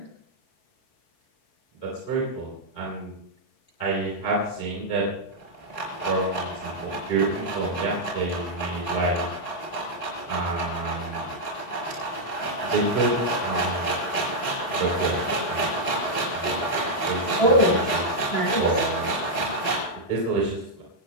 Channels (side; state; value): right; late; 3.9 ms